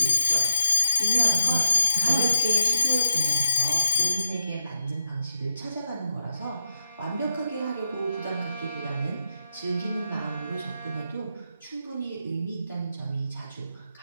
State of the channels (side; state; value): both; inverted; correlation -0.86